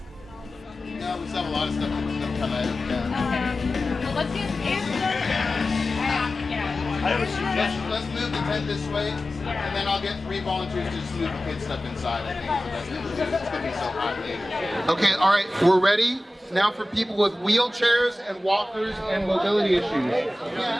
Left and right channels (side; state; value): both; normal; correlation 0.95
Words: No, we still have a lot of stuff that come out. Yeah. Okay. Well, let's get Let's move the tent this way, and then I'll get 3 volunteers to just move the kids' stuff inside. I think it's the best thing to do. It's going to be so hot later. Okay, all right, we're ready. Now for people with wheelchairs and walkers and mobility issues. Raise